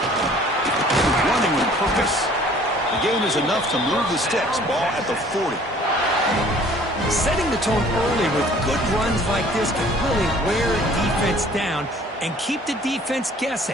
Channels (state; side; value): normal; both; correlation 0.53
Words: Running with purpose. The game is enough to move the sticks. Ball at the 40. Setting the tone early with good runs like this can really wear a defense down and keep the defense